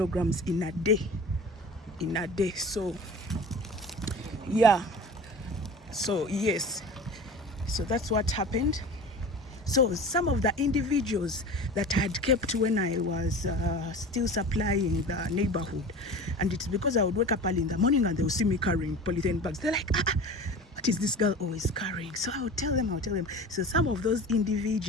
in a day. So yeah, so yes, so that's what happened. So some of the individuals that I had kept when I was still supplying the neighborhood, and it's because I would wake up early in the morning and they would see me carrying polythene bags. They're like, what is this girl always carrying? So I would tell them. So some of those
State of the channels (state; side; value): normal; both; correlation 0.36